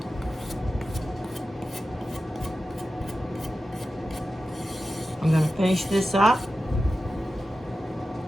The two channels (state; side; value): normal; both; correlation 0.93